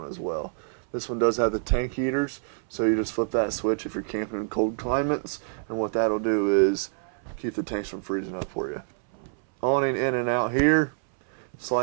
as well. This one does have the tank heaters, so you just flip that switch if you're camping in cold climates, and what that'll do is keep the tanks from freezing up for you. Awning in and out here,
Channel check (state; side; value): silent; left; 60 dB below the other